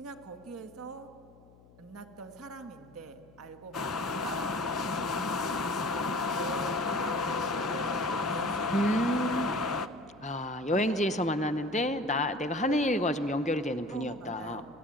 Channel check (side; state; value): left; noise; hum, 26 dB below the sound